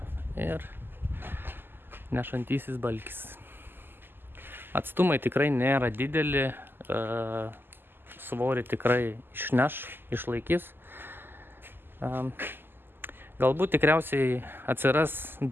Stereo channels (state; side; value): late; left; 0.097 ms